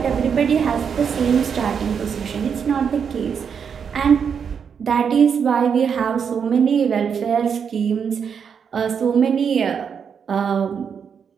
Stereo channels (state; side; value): quieter; left; 6.9 dB